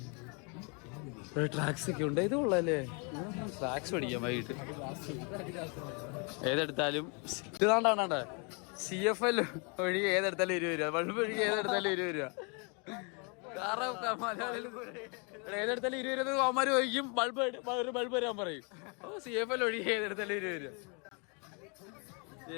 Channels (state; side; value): quieter; right; 34.5 dB